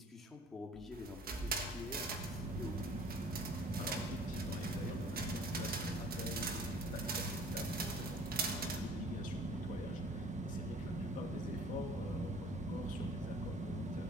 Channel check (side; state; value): both; normal; correlation 0.51